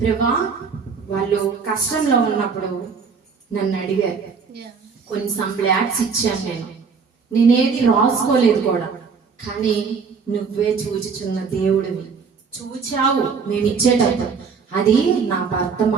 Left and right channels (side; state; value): left; quieter; 5.5 dB